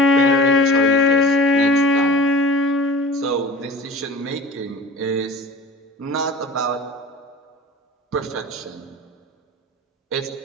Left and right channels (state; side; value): normal; both; correlation 0.39